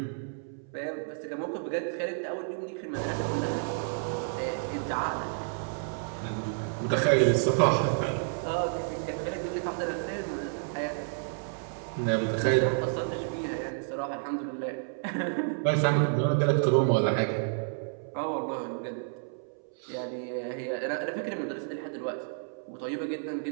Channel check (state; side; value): silent; left; 58 dB below the other